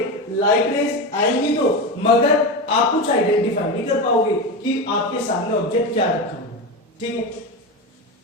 लाइट रेस आएंगी तो मगर आप कुछ आइडेंटिफाई नहीं कर पाओगे कि आपके सामने ऑब्जेक्ट क्या रखा हुआ है। ठीक है,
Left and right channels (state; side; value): normal; both; correlation 0.19